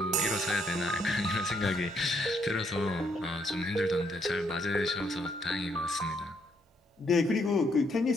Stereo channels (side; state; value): both; normal; correlation 0.72